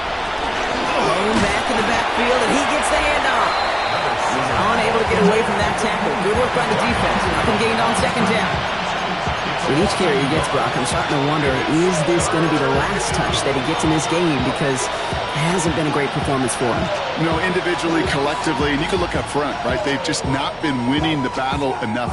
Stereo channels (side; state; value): both; identical; correlation 1.00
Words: Thrown back in the backfield, and he gets the handoff. He's unable to get away from that tackle. Good work by the defense. Nothing gained on 2nd down. With each carry he gets, Brock, I'm starting to wonder, is this going to be the last touch that he gets in this game? Because it hasn't been a great performance for him. You know, individually, collectively, and you can look up front, right? They've just not been winning the battle